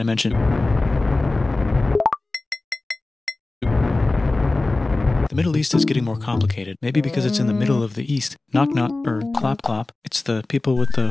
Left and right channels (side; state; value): right; quieter; 3.1 dB